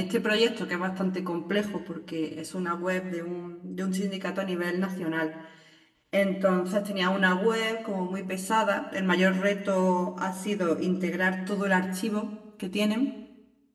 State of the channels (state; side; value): identical; both; correlation 1.00